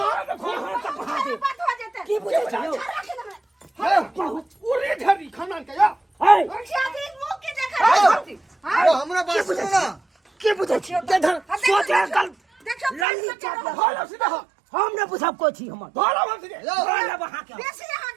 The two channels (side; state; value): left; drops out; at 13.1 s